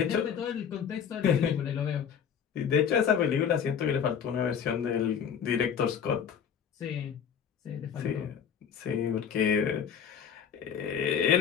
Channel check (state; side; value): quieter; right; 7.8 dB